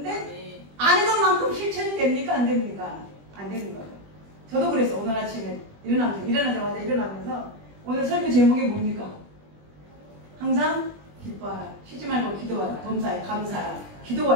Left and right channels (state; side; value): late; left; 20 ms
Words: 아는 것만큼 실천이 됩니까? 안 됩니까? 안 되는 거죠. 저도 그래서 오늘 아침에 일어나자마자 일어나면서 오늘 설교 제목이 뭡니까? 항상 기뻐하라, 쉬지 말고 기도하라, 범사에 감사하라.